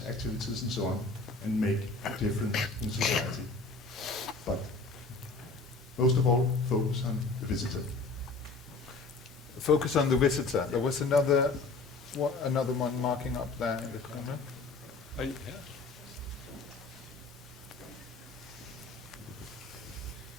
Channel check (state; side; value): quieter; right; 3.8 dB